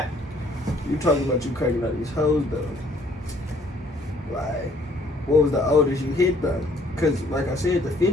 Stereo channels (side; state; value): both; normal; correlation 0.62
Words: you talking about you cracking out these hoes though? Like, what was the oldest you hit though? Cause like I said, the